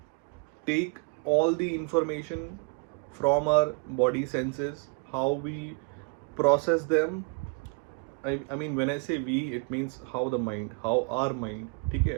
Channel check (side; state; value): left; quieter; 32.4 dB